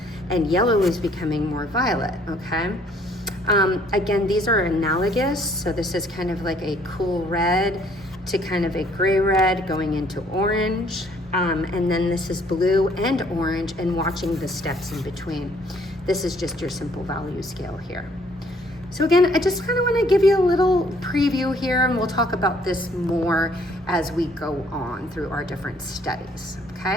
and yellow was becoming more violet, okay? Again, these are analogous. So this is kind of like a cool red to kind of a gray red going into orange. And then this is blue and orange, and watching the steps in between. This is just your simple value scale here. So again, I just kind of want to give you a little preview here, and we'll talk about this more as we go on through our different studies.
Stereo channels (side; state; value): both; normal; correlation 0.63